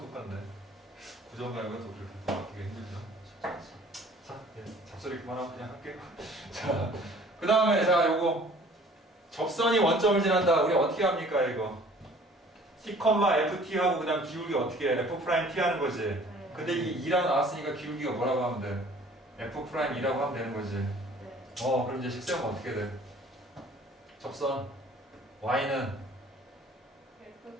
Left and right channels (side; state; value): both; normal; correlation 0.52